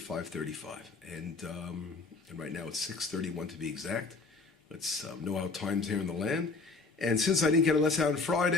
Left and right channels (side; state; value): right; quieter; 3.9 dB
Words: And right now it's 6:31 to be exact. Let's know our times here in the land. And since I didn't get a lesson out on